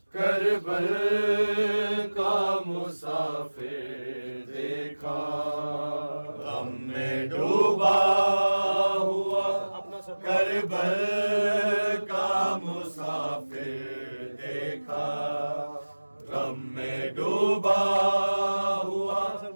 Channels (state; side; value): inverted; both; correlation -1.00